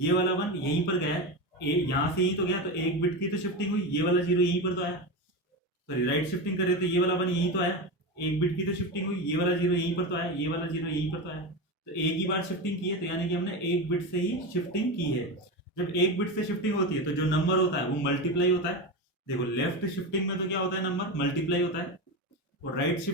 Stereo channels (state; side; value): normal; both; correlation 0.19